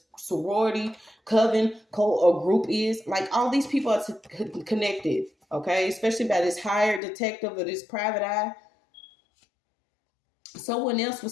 sorority, coven, cult, or group is. Like, all these people are connected, okay? Especially by this hired detective or this private eye. Someone else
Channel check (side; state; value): right; drops out; at 7.0 s